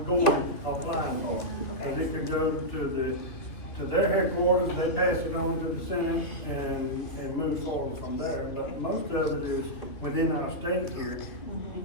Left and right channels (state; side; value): late; right; 2.7 ms